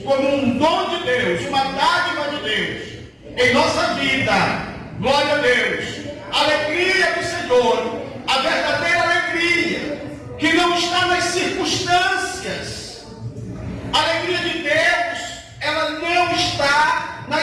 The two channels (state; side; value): identical; both; correlation 1.00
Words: como um dom de Deus, uma dádiva de Deus em nossa vida. Glória a Deus. A alegria do Senhor, a verdadeira alegria, que não está nas circunstâncias. A alegria de Deus, ela não está